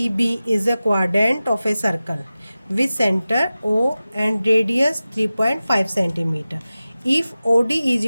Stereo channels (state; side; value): inverted; both; correlation -0.95